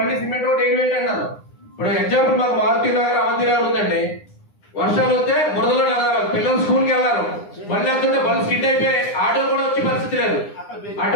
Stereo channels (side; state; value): right; late; 9.8 ms